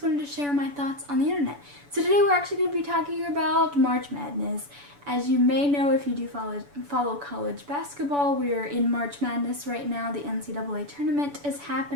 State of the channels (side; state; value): left; late; 7.0 ms